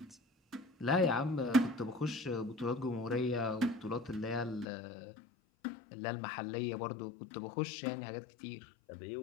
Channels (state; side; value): drops out; right; at 4.7 s